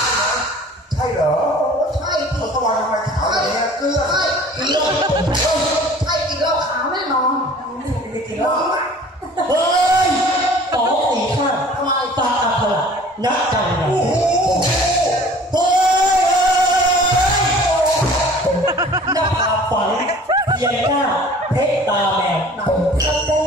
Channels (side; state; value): both; normal; correlation 0.48